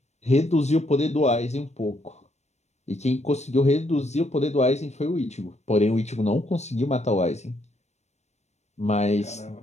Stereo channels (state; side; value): late; right; 0.32 ms